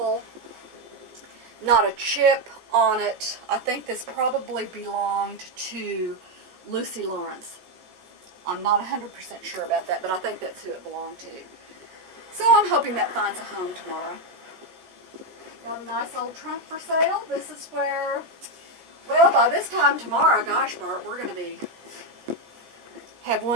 Not a chip on it. I think this probably belonged to Lucy Lawrence. I'm not 100% sure about that, but I think that's who it belonged to. So I'm hoping that finds a home tomorrow. Got a nice old trunk for sale. This is where, well, by this time tomorrow, gosh, Bart, we're going to have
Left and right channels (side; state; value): left; late; 16 ms